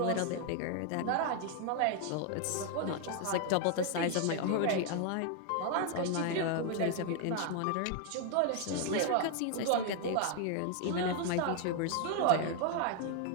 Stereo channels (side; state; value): both; different; correlation 0.00